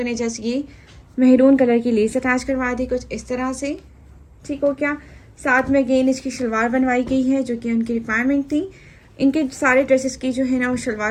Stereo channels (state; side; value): identical; both; correlation 1.00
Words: ने जस्ट ये मेहरून कलर की लेस अटैच करवा दी कुछ इस तरह से, ठीक हो क्या। साथ में अगेन इसकी शलवार बनवाई गई है जो कि उनकी रिक्वायरमेंट थी। इनके सारे ड्रेसेस की जो है ना वो